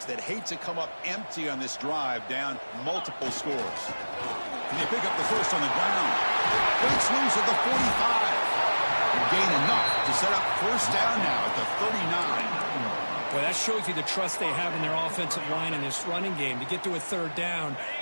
that hate to come up empty on this drive, down multiple scores. And they pick up the first on the ground. Breaks loose at the 45. And gain enough to set up first down now at the 39. Well, that shows you the trust they have in their offensive line in this running game. To get to a 3rd down,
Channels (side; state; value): both; inverted; correlation -1.00